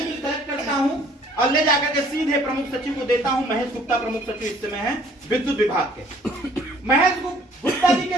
बिल कलेक्ट करता हूँ और ले जाकर के सीधे प्रमुख सचिव को देता हूँ। महेश गुप्ता प्रमुख सचिव इस समय है विद्युत विभाग के। महेश गुप्ता जी के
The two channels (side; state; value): both; normal; correlation 0.58